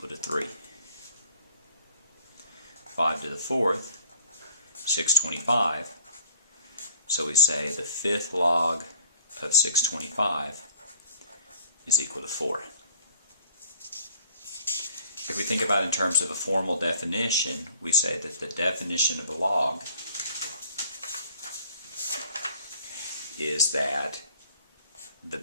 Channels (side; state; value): both; inverted; correlation -0.54